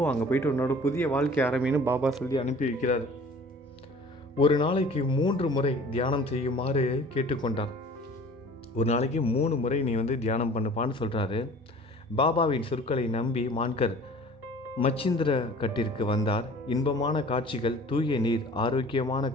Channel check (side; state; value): both; normal; correlation 0.47